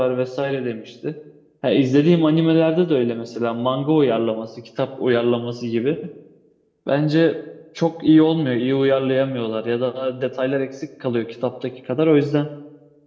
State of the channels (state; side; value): identical; both; correlation 1.00